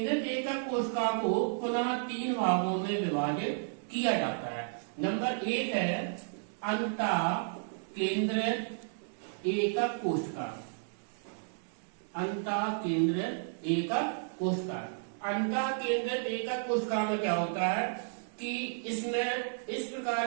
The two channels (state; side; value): silent; left; digital silence